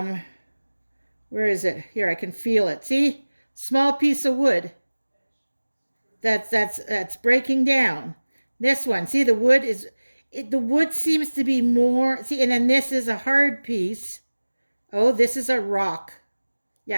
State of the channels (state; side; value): inverted; both; correlation -1.00